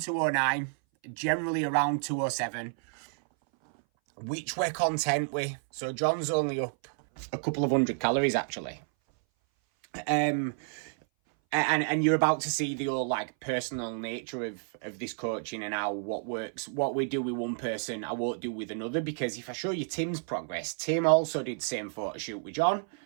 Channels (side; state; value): left; silent; 58 dB below the other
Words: generally around 207, which we're content with. So John's only up a couple of hundred calories, actually. And you're about to see the whole like personal nature of this coaching and how what works, what we do with one person, I won't do with another. Because if I show you Tim's progress, Tim also did the same photo shoot with John.